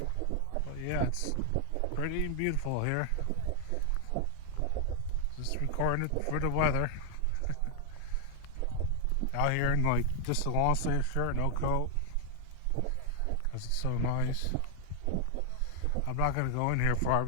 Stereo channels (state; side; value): different; both; correlation 0.00